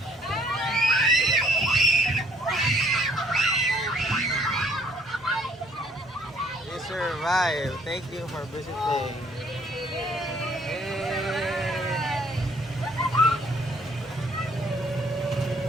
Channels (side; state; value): both; normal; correlation 0.62